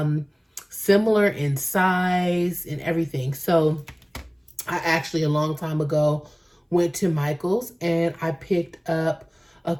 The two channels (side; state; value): both; identical; correlation 1.00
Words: similar in size and everything. So I actually a long time ago went to Michael's and I picked up a